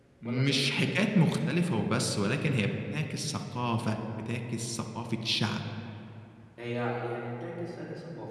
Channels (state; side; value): identical; both; correlation 1.00